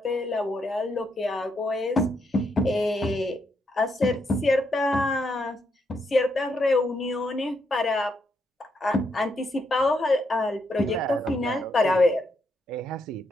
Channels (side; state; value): both; normal; correlation 0.78